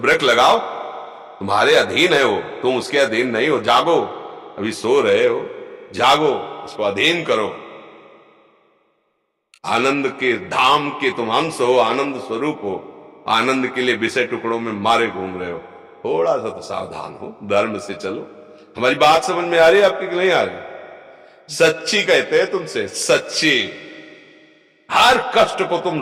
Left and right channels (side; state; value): both; identical; correlation 1.00